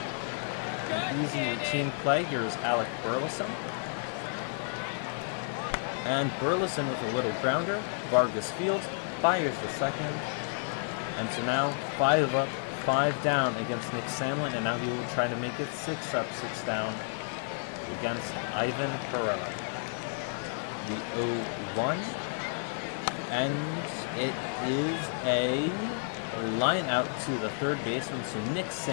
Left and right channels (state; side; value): silent; right; digital silence